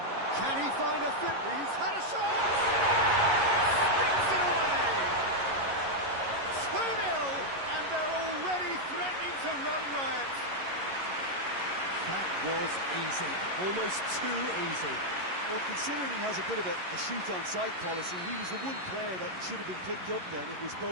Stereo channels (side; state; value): left; late; 11 ms